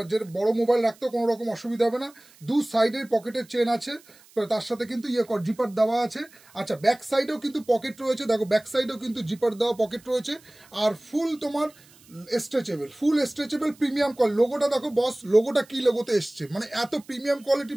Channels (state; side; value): noise; right; hiss, 27 dB below the sound